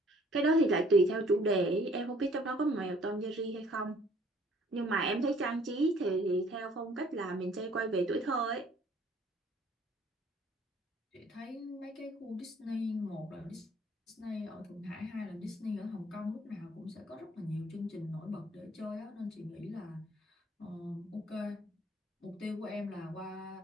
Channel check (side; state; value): both; normal; correlation 0.58